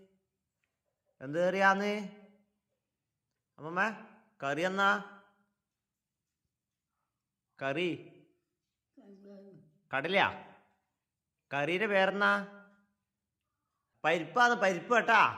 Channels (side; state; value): both; identical; correlation 1.00